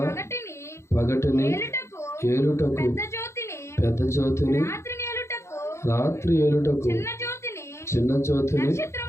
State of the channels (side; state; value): right; late; 0.13 ms